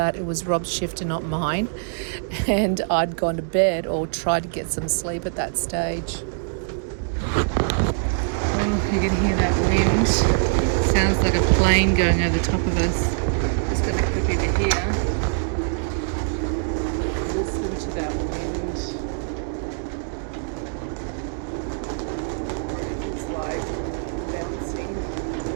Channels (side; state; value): left; silent; digital silence